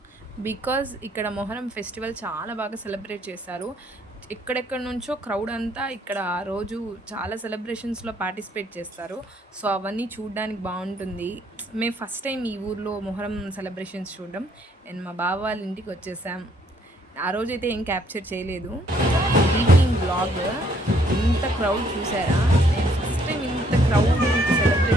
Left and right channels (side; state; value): both; normal; correlation 0.67